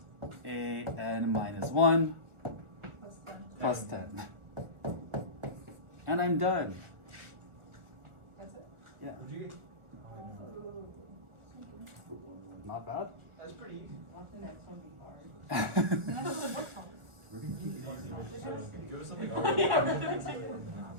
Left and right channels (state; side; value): late; left; 1.4 ms